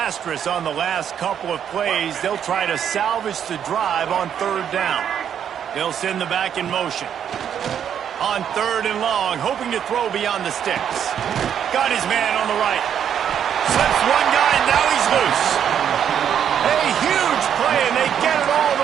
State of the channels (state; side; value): quieter; left; 8.8 dB